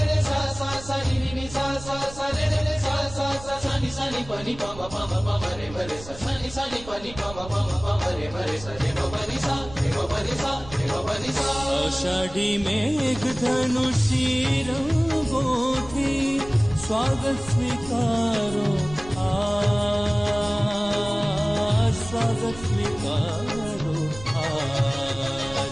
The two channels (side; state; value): right; noise; rumble, 15 dB below the sound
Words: रे सा सा सा, नी नी नी सा सा सा रे रे रे सा सा सा। सानी सानी पानी पामा पामा पामा रे भरे सा, सानी सानी पानी पामा पामा पामा रे भरे सा। रे बाबा नी सा, रे बाबा नी सा, रे बाबा नी सा। आषाढ़ी मेघ धनुषी रंगोथी स्वागत स्वीकारो आज, स्वागत स्वीकारो